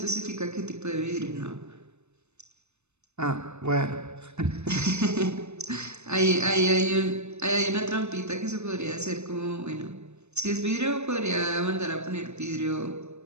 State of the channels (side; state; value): left; late; 0.81 ms